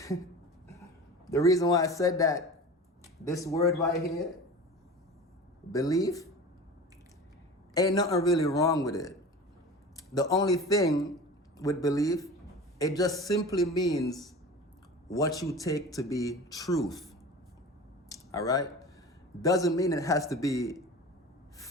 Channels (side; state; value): both; normal; correlation 0.35